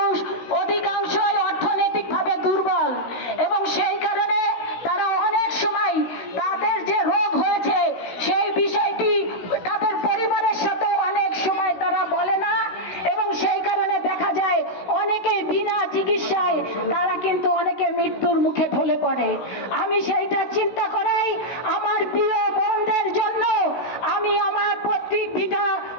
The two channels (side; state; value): right; late; 16 ms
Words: করে। আমি সেইটা চিন্তা করেই আমার প্রিয় বোনদের জন্য আমি আমার পৈতৃক ভিটা